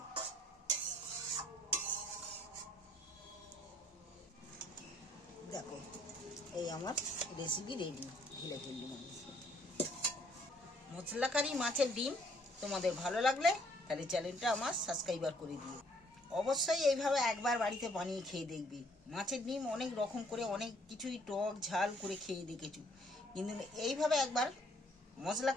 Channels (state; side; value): normal; both; correlation 0.64